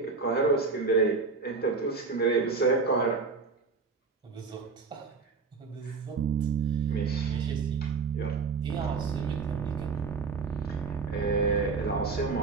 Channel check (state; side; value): quieter; left; 4.7 dB